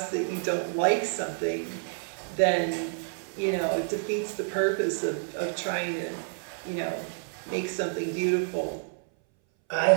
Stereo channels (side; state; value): left; silent; 59 dB below the other